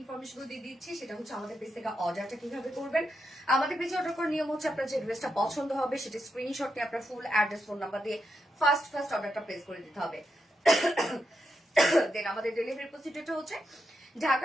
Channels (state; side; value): normal; both; correlation 0.84